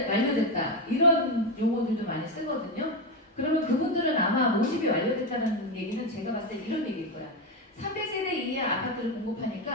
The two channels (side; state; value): both; normal; correlation 0.11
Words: 이런 용어들도 많이 쓰거든요. 그러면 그분들은 아마 모집이 완료됐다는 얘기는 제가 봤을 때 이런 얘기일 거야. 300세대 이하 아파트를